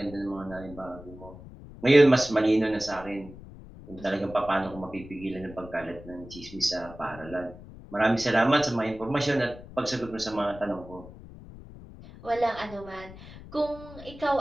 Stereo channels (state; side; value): noise; left; rumble, 17 dB below the sound